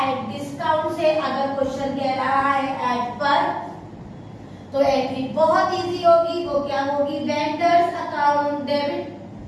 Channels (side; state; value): both; identical; correlation 1.00